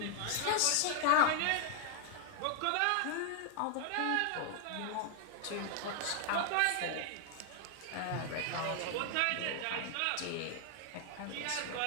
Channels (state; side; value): different; both; correlation 0.00